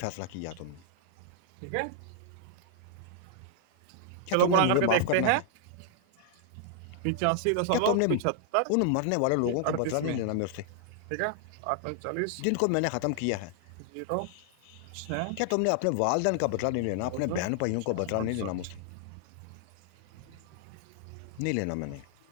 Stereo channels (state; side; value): different; both; correlation 0.00